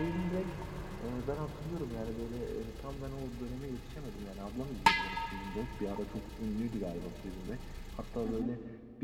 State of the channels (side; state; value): both; identical; correlation 1.00